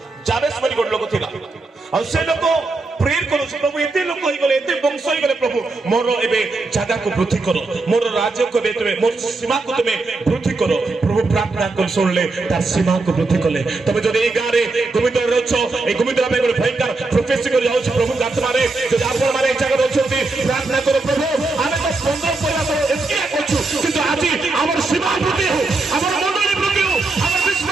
जाबेस मनि गोट लोक थिला आ से लोक प्रेयर करू प्रभु एते लोक होई गले एते वंश होई गले प्रभु मोर एबे जागा को वृद्धि करो मोर राज्य को बे तुमे मोर सीमा को तुमे वृद्धि करो प्रभु प्रार्थना कर सुनले तार सीमा को वृद्धि कले तबे जदि ए गारे गोविंद रछो ए गोविंद में गोटे भयंकर प्रोफेसी कर जाउ प्रभु आत्मा रे जदि आपण मारे जागा रछोती प्रार्थना करो प्रभु आमे तो 15 पहिला तो एके करछु किंतु आजि हमर सीमा वृद्धि हो हमर मंडली वृद्धि हो हमर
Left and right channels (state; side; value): quieter; left; 3.4 dB